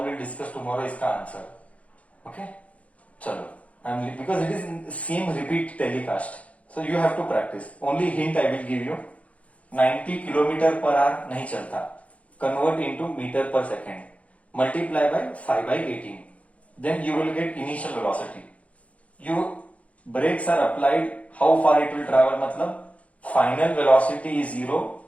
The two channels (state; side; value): late; right; 0.065 ms